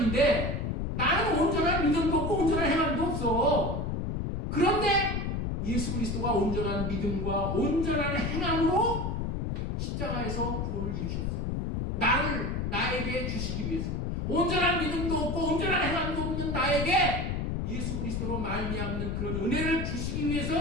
나는 온전한 믿음도 없고 온전한 행함도 없어. 그런데 예수 그리스도가 온전한 믿음과 온전한 행함으로 십자가에서 구원을 이루셨습니다. 나에게 주시기 위해서 온전한 믿음도 없고 온전한 행함도 없는 나에게 예수 그리스도로 말미암는 그런 은혜를 주시기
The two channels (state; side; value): noise; left; rumble, 2 dB below the sound